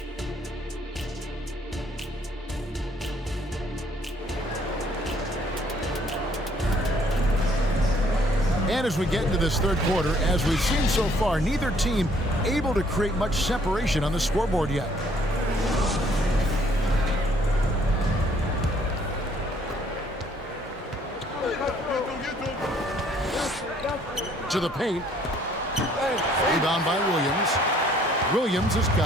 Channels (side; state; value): both; normal; correlation 0.63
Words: And as we get into this third quarter, as we've seen so far, neither team able to create much separation on the scoreboard yet. to the paint. Rebound by Williams. Williams has